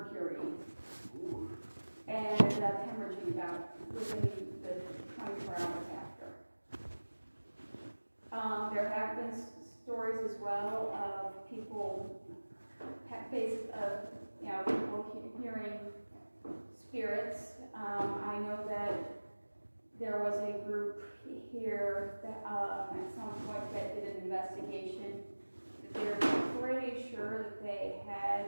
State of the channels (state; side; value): inverted; both; correlation -1.00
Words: Ooh. And ended up hemorrhaging about within the 24 hours after. There have been stories as well of people, people hearing spirits. I know that there was a group here that at some point that did an investigation. They're pretty sure